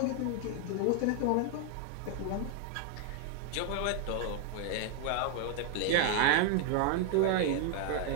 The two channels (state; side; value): different; both; correlation 0.00